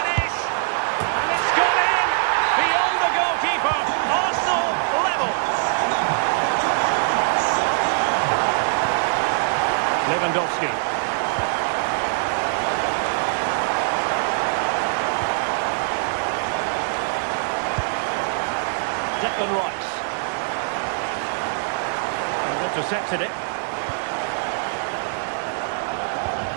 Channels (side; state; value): left; silent; digital silence